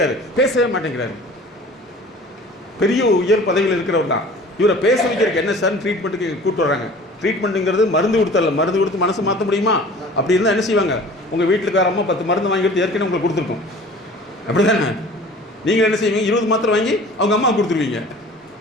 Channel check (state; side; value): normal; both; correlation 0.45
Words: பேசவே மாட்டேங்கிறாரு. பெரிய உயர் பதவியில் இருக்கிறவர் தான். இவரை பேச வைக்கிறதுக்கு என்ன சார் ட்ரீட்மெண்ட்டுக்கு கூப்பிட்டு வராங்க. ட்ரீட்மெண்ட்டுங்கிறது மருந்து கொடுத்தரல, மருந்து கொடுத்து மனசு மாற்ற முடியுமா? அப்படி இருந்தால் என்ன செய்வாங்க, உங்கள் வீட்டுக்கார அம்மா 10 மருந்து வாங்கி கொடுத்து ஏற்கனவே உங்களுக்கு கொடுத்துருக்கோம். அப்படி தானே? நீங்கள் என்ன செய்வீங்க, 20 மாத்திரை வாங்கி அவங்க அம்மா கொடுத்துருவீங்க.